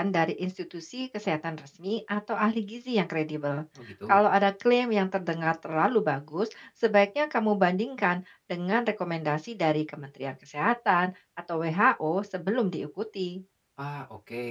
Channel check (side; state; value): both; identical; correlation 1.00